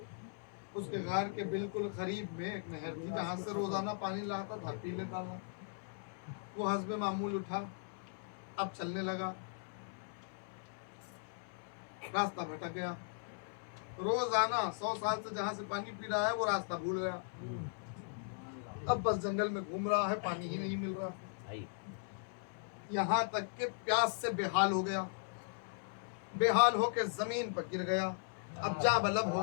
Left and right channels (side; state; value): right; silent; 52 dB below the other